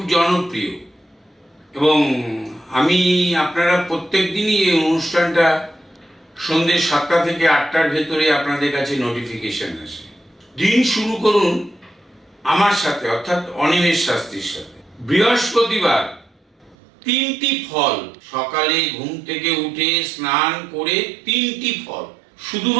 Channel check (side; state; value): left; drops out; at 16.8 s